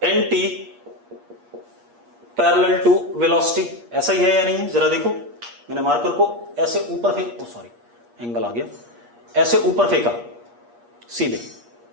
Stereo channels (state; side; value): late; left; 8.5 ms